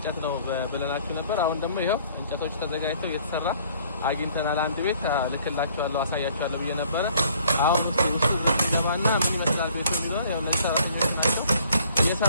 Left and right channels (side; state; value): both; inverted; correlation -0.59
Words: ነው ብለናችሁ ነበር። አሁን ደግሞ ይሄው እንጨቶች ተዘጋጅተው እየተሰራ አግኝተናል። አንድ ቤት ልክላችኋለሁ፣ አሳያችኋለሁ ብዬ ነበረ። አሁን ውስጥ ለማና ምን ይመስላል ቤቱ ቢሆን ያው እነዚህ ሰራተኞች ናቸው